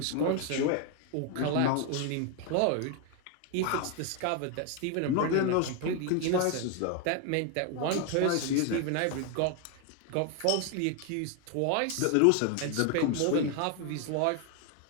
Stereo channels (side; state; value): both; different; correlation 0.01